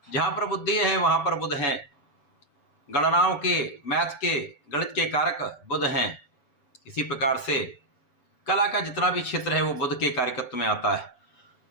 जहाँ पर बुद्धि है वहाँ पर बुध हैं। गणनाओं के, मैथ के, गणित के कारक बुध हैं। इसी प्रकार से कला का जितना भी क्षेत्र है वो बुध के कार्यकत्व में आता है।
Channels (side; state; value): right; late; 7.0 ms